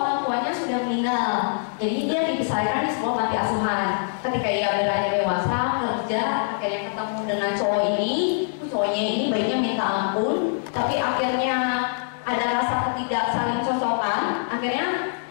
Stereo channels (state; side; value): silent; right; digital silence